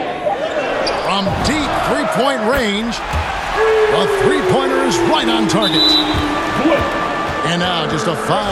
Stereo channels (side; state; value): both; identical; correlation 1.00